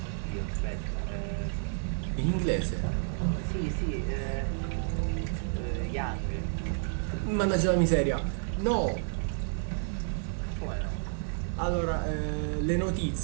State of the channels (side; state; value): left; silent; 57 dB below the other